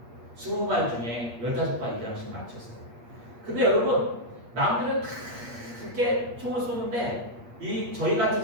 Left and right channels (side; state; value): left; late; 8.5 ms